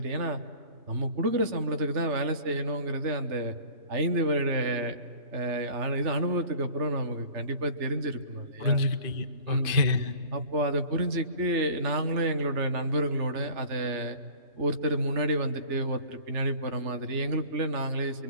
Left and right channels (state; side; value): late; left; 3.4 ms